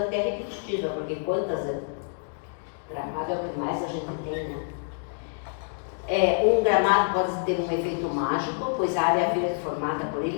repetitiva, porque quantas gramado é o que mais a gente tem, né? Um gramado pode ter um efeito mágico, pois a área verde formada por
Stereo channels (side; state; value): right; silent; digital silence